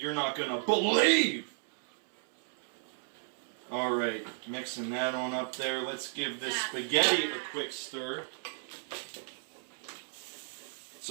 not going to believe. Alright, mixing that on up there. Let's give this spaghetti a quick stir.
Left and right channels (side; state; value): left; silent; 55 dB below the other